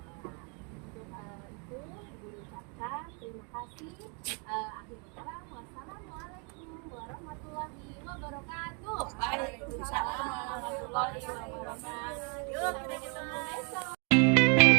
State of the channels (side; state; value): left; quieter; 35.7 dB